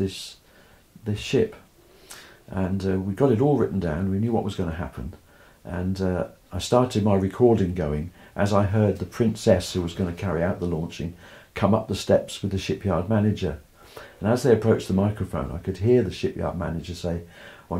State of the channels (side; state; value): both; identical; correlation 1.00